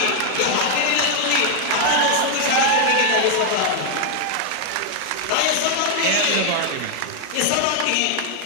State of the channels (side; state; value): both; different; correlation 0.00